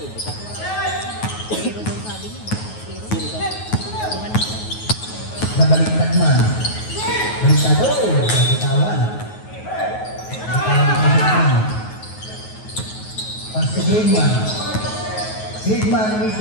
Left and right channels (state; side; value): late; right; 9.4 ms